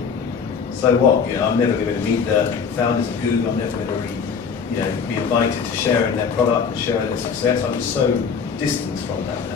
So what? You know, I'm never going to meet the founders of Google. I'm never going to be invited to share in their product and share in their success. I'm just so distant from that.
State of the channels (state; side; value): quieter; right; 6.2 dB